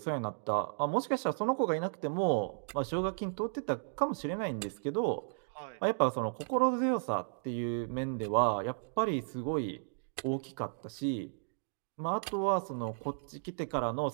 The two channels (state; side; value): silent; left; digital silence